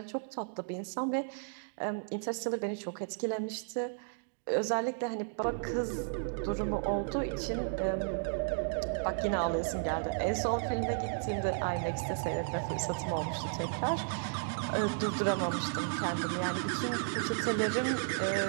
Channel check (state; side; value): silent; left; digital silence